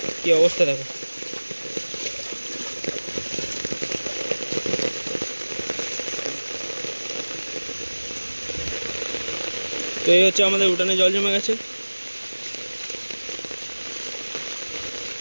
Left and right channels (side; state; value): both; inverted; correlation -1.00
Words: কি অবস্থা দেখো। তো এই হচ্ছে আমাদের উঠানে জল জমে গেছে।